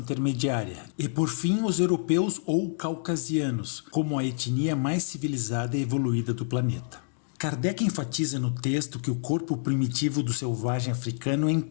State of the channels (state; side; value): silent; right; digital silence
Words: E por fim, os europeus ou caucasianos, como a etnia mais civilizada e evoluída do planeta. Kardec enfatiza no texto que o corpo primitivo do selvagem africano é